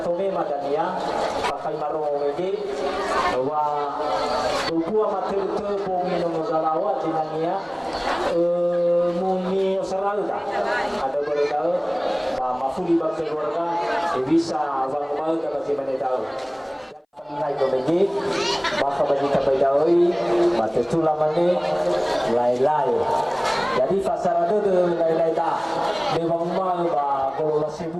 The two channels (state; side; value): identical; both; correlation 1.00